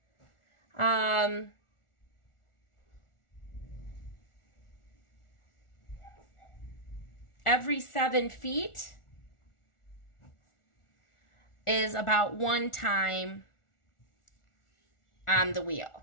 7 feet is about 1 time on the wheel.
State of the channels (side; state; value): right; late; 1.4 ms